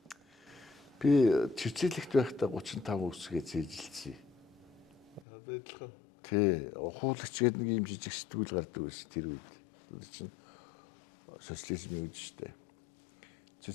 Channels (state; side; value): drops out; right; at 5.2 s